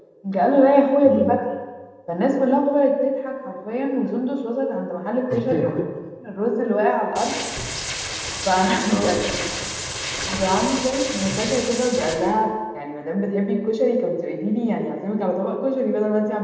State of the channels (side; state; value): both; identical; correlation 1.00